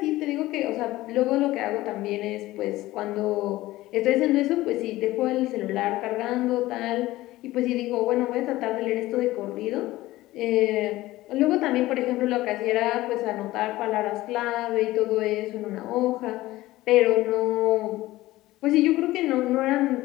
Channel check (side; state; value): right; quieter; 17.2 dB